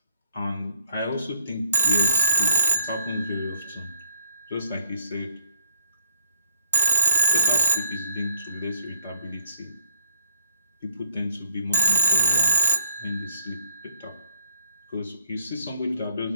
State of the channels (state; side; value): inverted; both; correlation -0.65